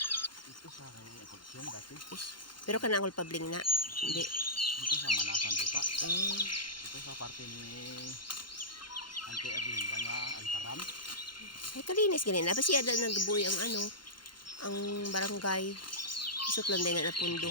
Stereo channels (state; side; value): late; right; 0.72 ms